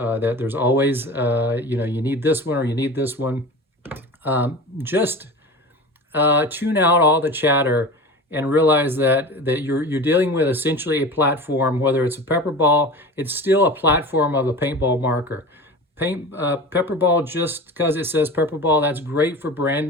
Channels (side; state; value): both; normal; correlation 0.33